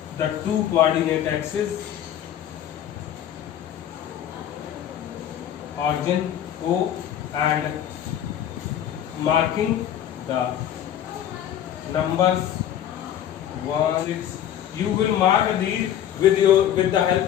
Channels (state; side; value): quieter; right; 10.6 dB